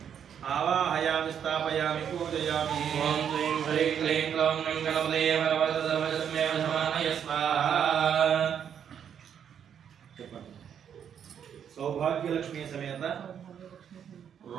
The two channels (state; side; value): quieter; left; 8.5 dB